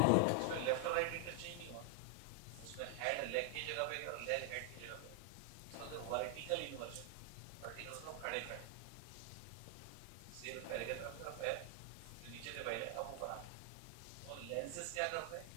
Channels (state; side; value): different; both; correlation 0.00